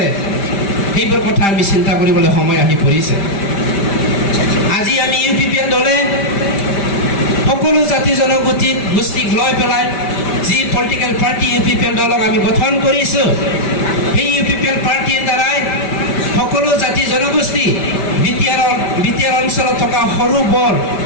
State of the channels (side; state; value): right; late; 5.1 ms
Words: সেইবোৰ কথা আমি চিন্তা কৰিবলৈ সময় আহি পৰিছে। আজি আমি UPPN দলে সকলো জাতি জনগোষ্ঠীক লৈ পেলাই যি পলিটিকেল পাৰ্টি UPPN দলক আমি গঠন কৰিছোঁ, সেই UPPN পাৰ্টিৰ দ্বাৰাই সকলো জাতি জনগোষ্ঠী BTR অঞ্চলত থকা সৰু বৰ